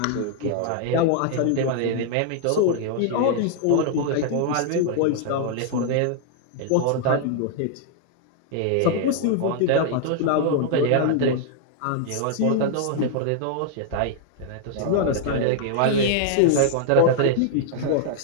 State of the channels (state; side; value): different; both; correlation 0.00